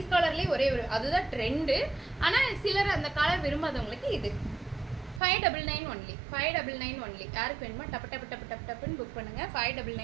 கலர்லேயே ஒரே ஒரு, அதுதான் ட்ரெண்டு. ஆனால் சிலர் அந்த கலர் விரும்பாதவங்களுக்கு இது 599 ஒன்லி. 599 ஒன்லி. யாருக்கு வேணுமோ டப்புன்னு புக் பண்ணுங்கள்.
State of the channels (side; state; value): left; drops out; at 5.2 s